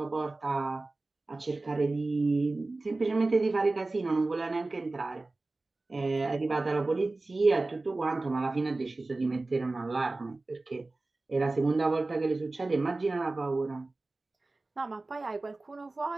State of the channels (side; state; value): left; quieter; 3.2 dB